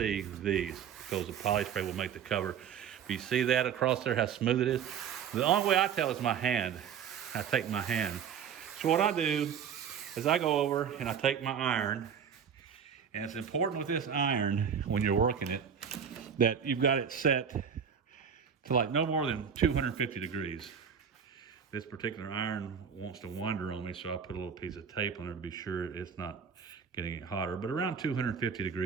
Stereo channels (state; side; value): quieter; left; 7.6 dB